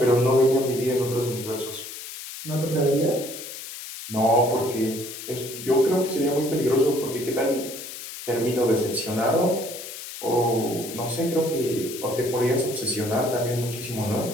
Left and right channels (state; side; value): noise; left; hiss, 11 dB below the sound